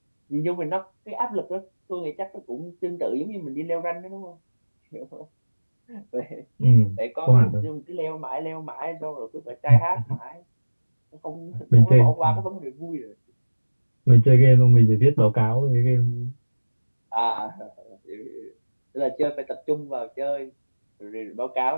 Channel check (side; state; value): both; inverted; correlation -1.00